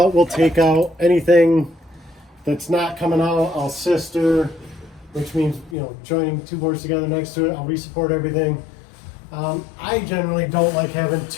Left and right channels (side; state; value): right; drops out; at 5.8 s